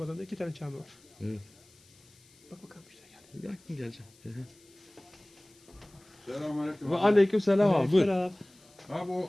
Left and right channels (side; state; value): left; noise; hiss, 28 dB below the sound